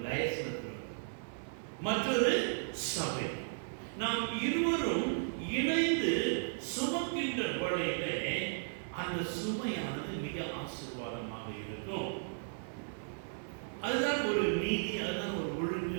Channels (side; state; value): left; silent; digital silence